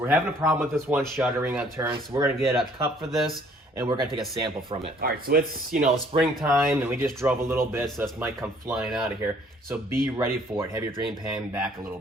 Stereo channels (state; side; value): normal; both; correlation 0.59